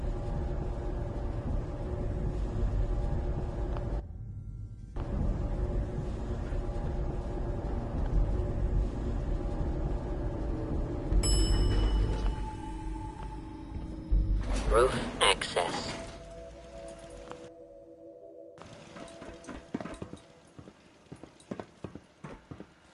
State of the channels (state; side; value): identical; both; correlation 1.00